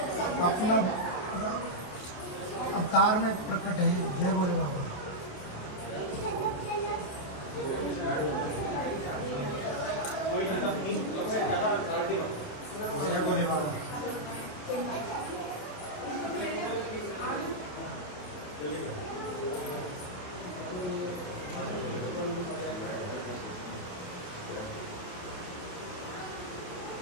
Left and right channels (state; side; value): late; right; 28 ms